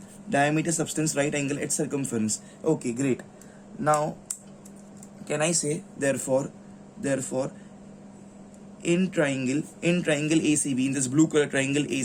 Diameter substance, right angle at circumference. Okay, great. Now can I say therefore in triangle ACB, in this blue color triangle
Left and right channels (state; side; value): identical; both; correlation 1.00